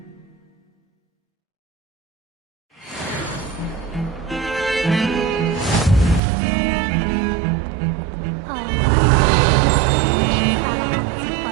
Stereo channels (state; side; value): drops out; left; at 6.2 s